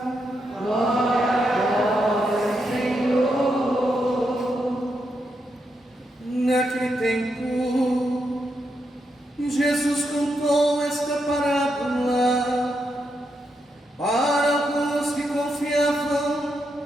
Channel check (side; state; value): both; normal; correlation 0.82